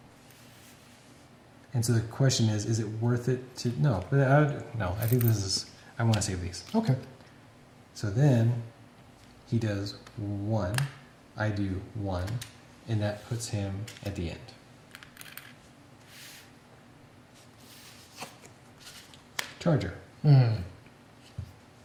And so the question is it worth it to... No, I think this is... I want to save these. Okay. So then he does 1, I do 1, and that puts him at the end. Charger.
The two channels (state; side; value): identical; both; correlation 1.00